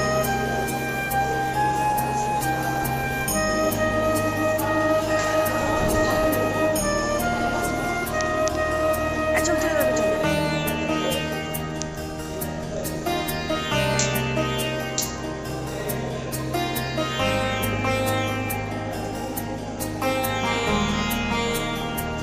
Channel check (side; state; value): both; identical; correlation 1.00